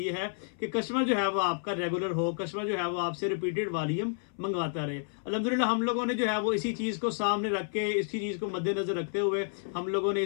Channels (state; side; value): silent; right; 58 dB below the other